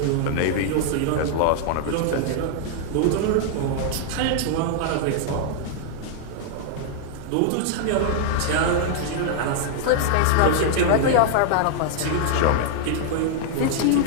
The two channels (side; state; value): both; different; correlation 0.00